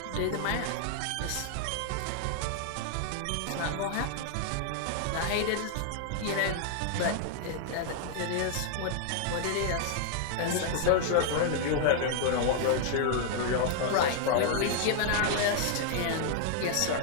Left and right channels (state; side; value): different; both; correlation 0.00